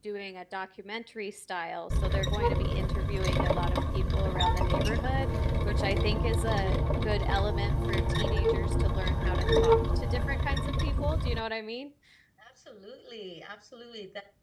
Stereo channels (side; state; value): both; identical; correlation 1.00